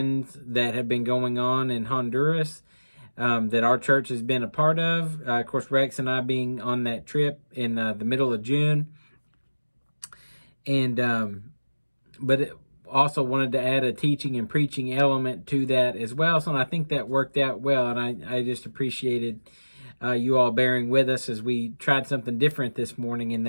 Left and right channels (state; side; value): inverted; both; correlation -1.00